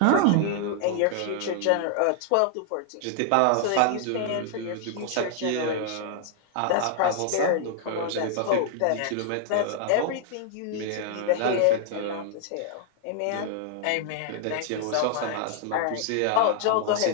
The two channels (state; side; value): different; both; correlation -0.01